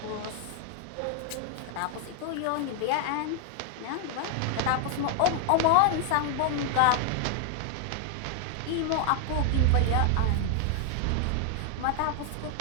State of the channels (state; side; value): different; both; correlation 0.00